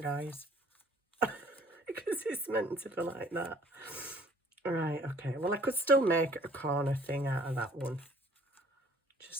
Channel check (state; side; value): normal; both; correlation 0.55